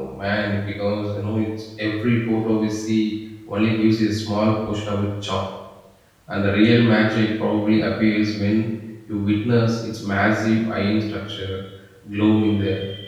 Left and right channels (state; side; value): identical; both; correlation 1.00